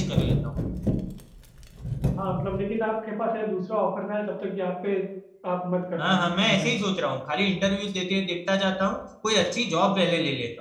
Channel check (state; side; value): identical; both; correlation 1.00